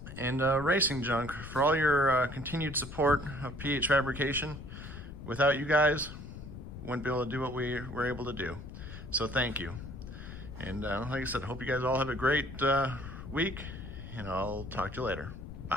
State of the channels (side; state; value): left; noise; rumble, 11 dB below the sound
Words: and Racing Junk for all your continued support of PH Fabrication. Without you guys, wouldn't be able to do what we were able to do. So thank you. And like I said, I hope you guys all have a great week, and I'll talk to you later.